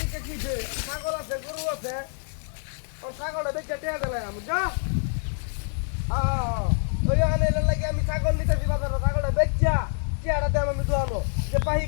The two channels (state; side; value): silent; right; 58 dB below the other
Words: কিছে ছাগল আছে গরু আছে ও ছাগলটা দেখে টেয়া দিলাম বুঝছো ওই আনে লাগে আমি ছাগল নিতেছি বাজারে ছাগলটা বেচা টেয়াটা দেব আমি দোয়ানো যে পাহি